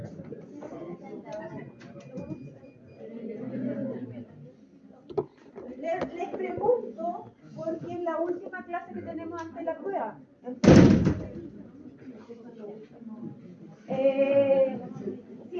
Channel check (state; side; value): identical; both; correlation 1.00